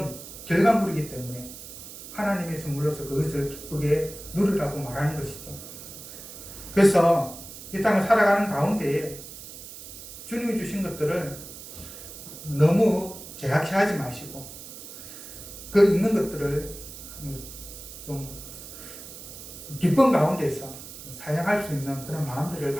결과물이기 때문에 하나님의 선물로서 그것을 기쁘게 누리라고 말하는 것이죠. 그래서 이 땅을 살아가는 가운데에 주님이 주신 것들을 너무 제약시하지 마시고 그 있는 것들을 좀 기쁨 가운데서 사용할 수 있는 그런 마음들을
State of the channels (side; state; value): right; noise; hiss, 13 dB below the sound